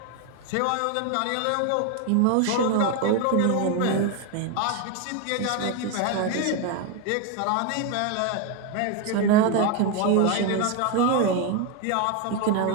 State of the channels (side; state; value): both; different; correlation 0.02